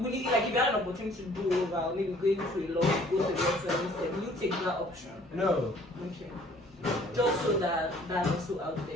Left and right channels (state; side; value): normal; both; correlation 0.56